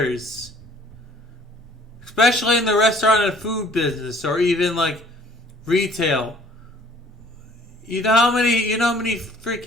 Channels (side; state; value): both; normal; correlation 0.56